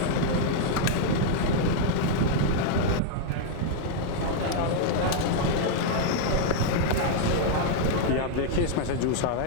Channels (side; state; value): both; different; correlation 0.00